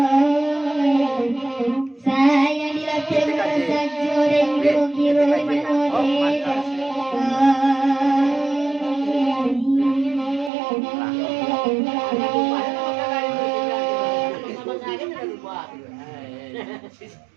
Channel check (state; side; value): drops out; left; at 10.5 s